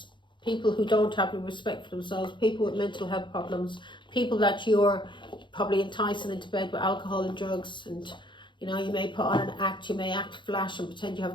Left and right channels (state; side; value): late; right; 0.23 ms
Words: People who don't have the respect for themselves, people with mental health problems, people that you're probably enticing into bed with alcohol and drugs, and you know, you may put on an act, you may act flash and pretend you